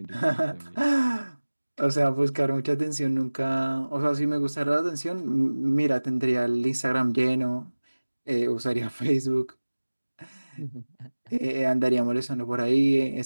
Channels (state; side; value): inverted; both; correlation -1.00